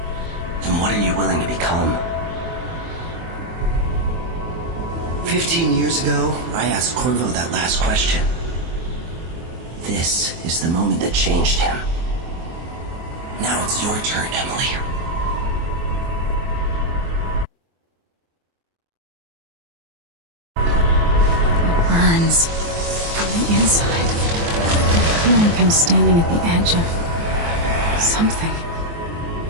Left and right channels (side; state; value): left; late; 24 ms